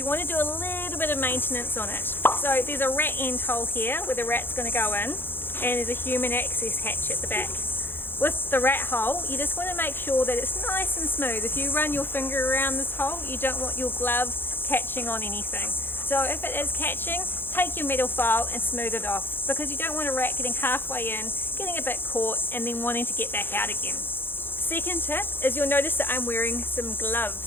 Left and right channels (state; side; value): late; right; 0.10 ms